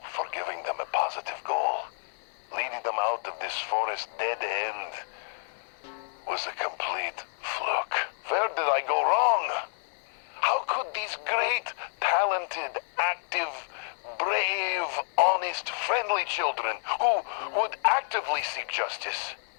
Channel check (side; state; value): right; silent; 58 dB below the other